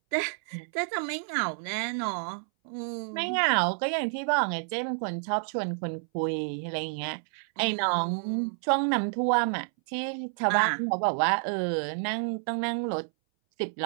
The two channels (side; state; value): left; silent; 59 dB below the other